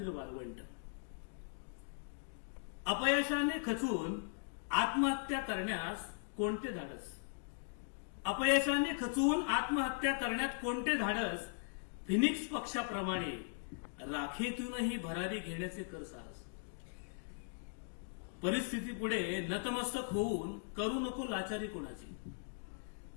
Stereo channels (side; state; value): right; silent; digital silence